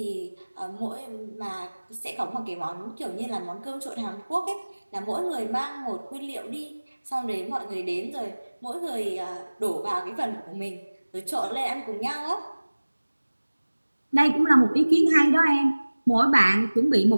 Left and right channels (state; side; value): inverted; both; correlation -1.00